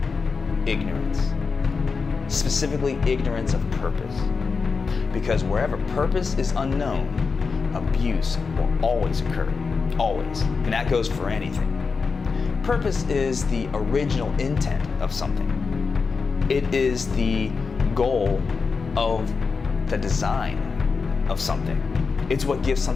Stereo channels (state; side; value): quieter; right; 4.9 dB